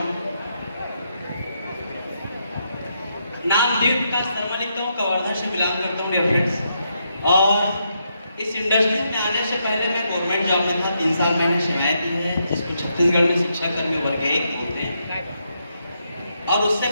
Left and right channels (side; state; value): both; inverted; correlation -0.80